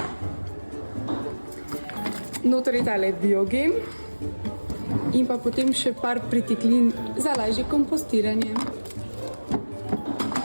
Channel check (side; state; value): both; inverted; correlation -1.00